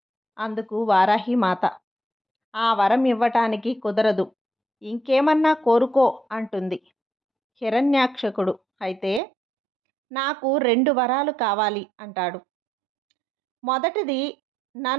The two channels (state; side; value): drops out; left; at 9.2 s